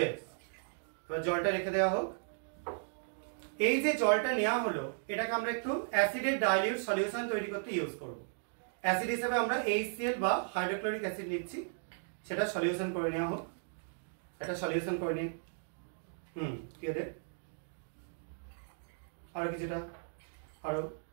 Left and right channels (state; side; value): silent; left; digital silence